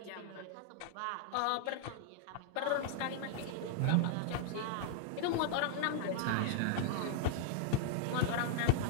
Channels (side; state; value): both; different; correlation -0.01